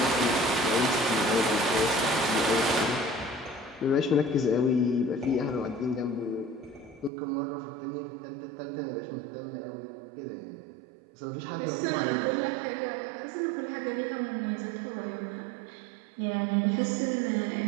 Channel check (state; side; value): drops out; left; at 7.1 s